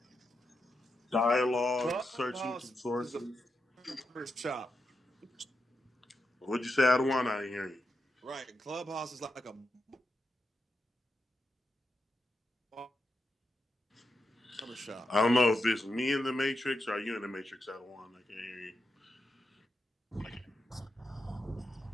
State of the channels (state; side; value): normal; both; correlation 0.86